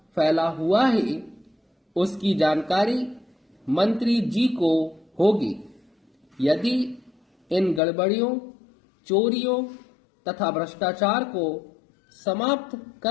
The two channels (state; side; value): drops out; right; at 7.8 s